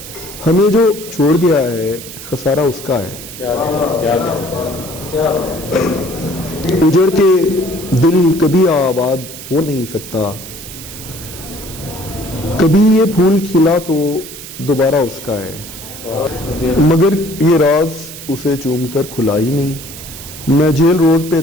ہمیں جو چھوڑ گیا ہے خسارہ اس کا ہے. اجڑ کے دل کبھی آباد ہو نہیں سکتا. کبھی یہ پھول کھلا تو دوبارہ اس کا ہے. مگر یہ راز اسے چوم کر کھلا ہی نہیں. میں جیل روڈ پہ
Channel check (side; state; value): right; noise; hiss, 13 dB below the sound